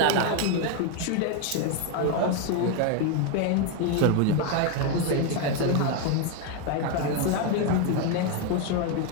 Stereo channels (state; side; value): different; both; correlation 0.01